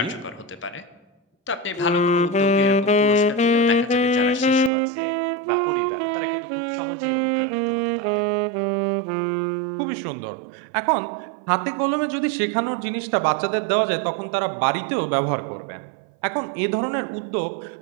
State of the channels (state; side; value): drops out; left; at 4.7 s